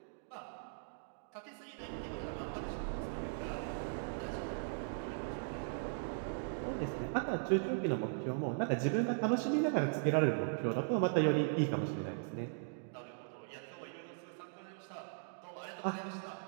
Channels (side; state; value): left; silent; digital silence